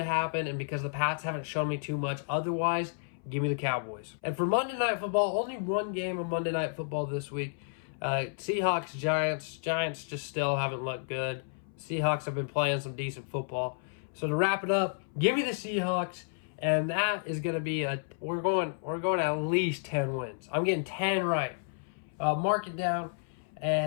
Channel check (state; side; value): silent; right; 57 dB below the other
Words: happen, and because the Pats haven't shown me too much otherwise, give me the Cowboys. And for Monday Night Football, only one game of Monday Night Football this week. Seahawks, Giants. Giants just still haven't looked good. Seahawks have been playing some decent football. So to wrap it up, give me the Seahawks, and that is going to be we're going at least 10 wins. I'm getting 10 right. Mark it down,